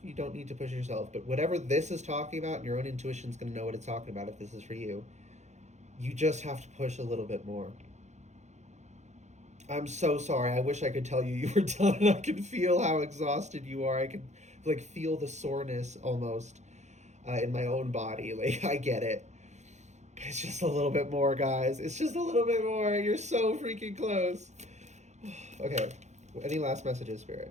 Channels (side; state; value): left; late; 0.33 ms